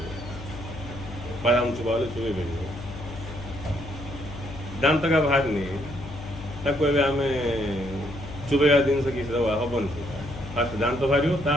ବାଦାମ ଚୁବା ବୋଲି ଚୁବେଇ ପାରିବ। ଦାନ୍ତକା ବାହାରିନି ତାକୁ ଏବେ ଆମେ ଚୁବେଇବା ଜିନିଷ କିଛି ଦେବା ହେବନି ସେଇଟା। ଫାଷ୍ଟ ଦାନ୍ତ ବାହାରିବ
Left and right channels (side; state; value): left; noise; hum, 12 dB below the sound